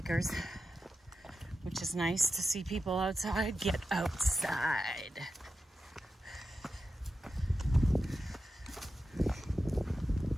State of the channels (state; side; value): normal; both; correlation 0.91